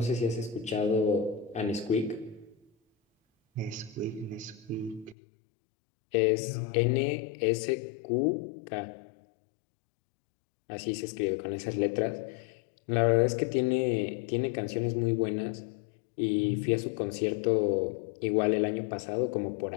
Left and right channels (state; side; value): drops out; right; at 5.2 s